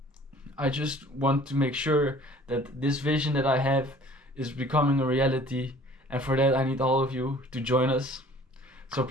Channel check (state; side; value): normal; both; correlation 0.51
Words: I just want to make sure that this vision that I have is becoming a reality, and for that I need all of you to join us. So